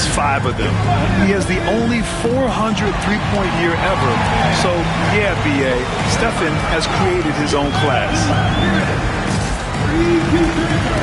5 of them. He has the only 400 three-point year ever. So, yeah, B.A., Stephen has created his own class.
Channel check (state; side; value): identical; both; correlation 1.00